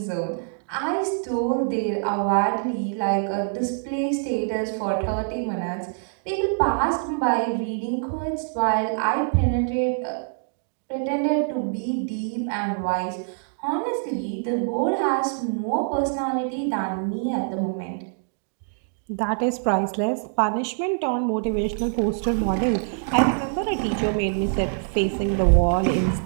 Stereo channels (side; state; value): left; silent; digital silence